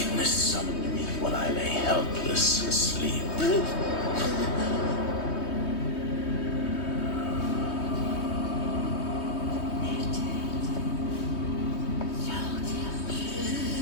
summoned me while I lay helpless asleep.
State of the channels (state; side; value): late; right; 3.2 ms